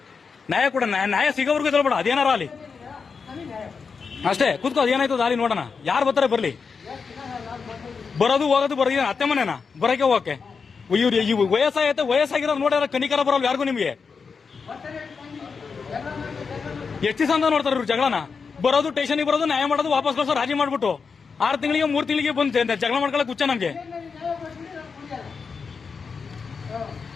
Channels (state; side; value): quieter; right; 5.4 dB